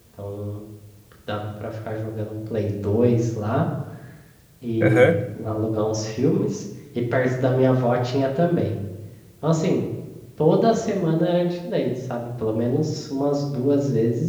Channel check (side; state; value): both; identical; correlation 1.00